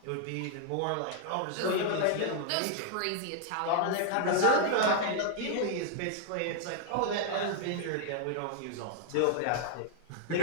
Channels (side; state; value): both; different; correlation 0.00